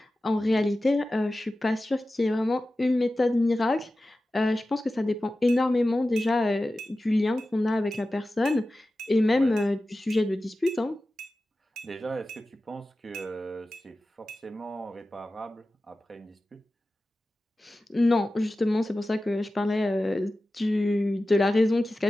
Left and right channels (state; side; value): normal; both; correlation 0.95